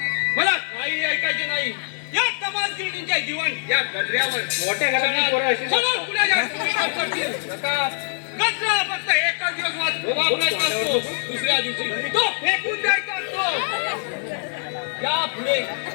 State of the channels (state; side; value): silent; right; 55 dB below the other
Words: मला काही ऐकायचे नाही. या तमासगिरींच्या जीवन या गजऱ्यावर मोठ्या घरातली पोरं अशी सगळं पुढे गजरा फक्त एकच दिवस वापरायचा असतो. दुसऱ्या दिवशी तो फेकून द्यायचा असतो. या